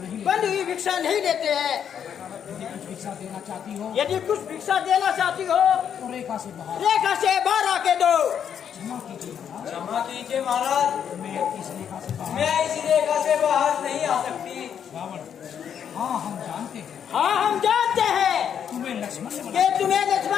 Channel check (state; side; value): quieter; right; 8.4 dB